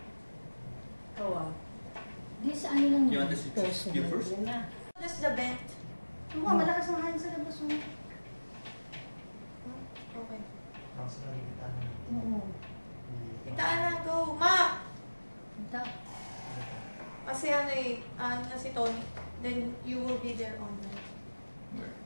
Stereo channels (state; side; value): inverted; both; correlation -1.00